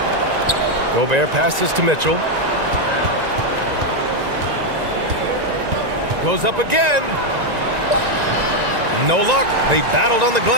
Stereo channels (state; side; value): late; left; 1.9 ms